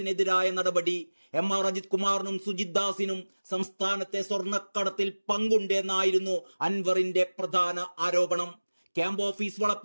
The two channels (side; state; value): both; inverted; correlation -1.00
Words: നടപടി. MR അജിത് കുമാറിനും സുജിത് ദാസിനും സംസ്ഥാനത്തെ സ്വർണ്ണക്കടത്തിൽ പങ്കുണ്ടെന്നായിരുന്നു അൻവറിന്റെ പ്രധാന ആരോപണം. ക്യാമ്പ് ഓഫീസ്